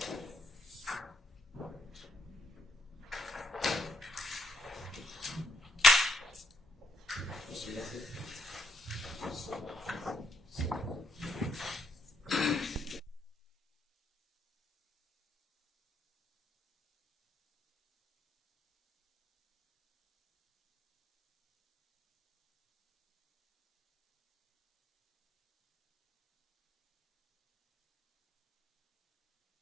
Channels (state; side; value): normal; both; correlation 0.76